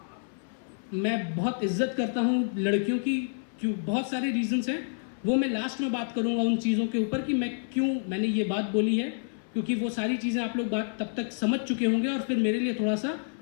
मैं बहुत इज्जत करता हूं लड़कियों की, क्यों बहुत सारे रीजंस हैं, वो मैं लास्ट में बात करूंगा उन चीज़ों के ऊपर कि मैंने ये बात बोली है, क्योंकि वो सारी चीज़ें आप लोग बात तब तक समझ चुके होंगे और फिर मेरे लिए थोड़ा सा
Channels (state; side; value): silent; right; 59 dB below the other